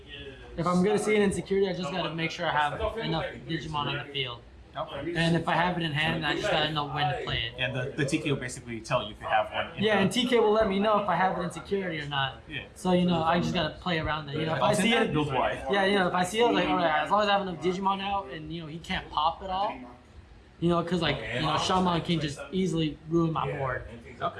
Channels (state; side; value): identical; both; correlation 1.00